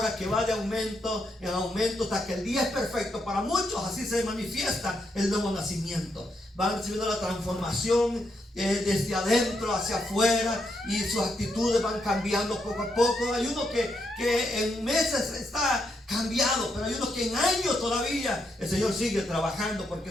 que va de aumento en aumento hasta que el día es perfecto. Para muchos así se manifiesta el nuevo nacimiento. Van recibiendo la transformación desde adentro hacia afuera y sus actitudes van cambiando poco a poco. Hay uno que en meses está cambiado, pero hay unos que en años todavía el Señor sigue trabajando, porque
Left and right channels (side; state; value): both; normal; correlation 0.80